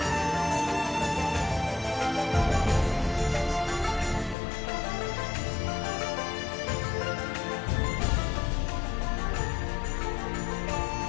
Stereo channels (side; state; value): right; drops out; at 4.4 s